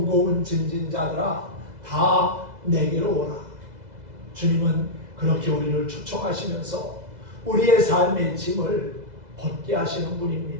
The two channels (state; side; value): late; left; 2.0 ms